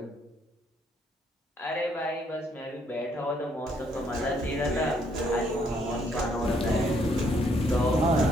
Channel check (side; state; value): both; normal; correlation 0.69